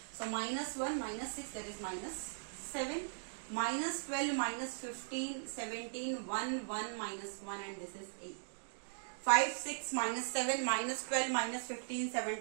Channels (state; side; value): silent; left; digital silence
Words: So minus 1 minus 6, that is minus 7. Minus 12 minus 15, 17, 1, 1 minus 1, and this is 8. 5, 6 minus 7 minus 12 minus 15,